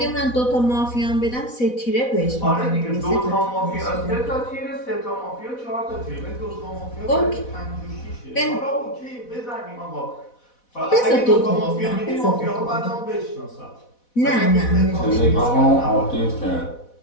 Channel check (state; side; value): late; right; 4.1 ms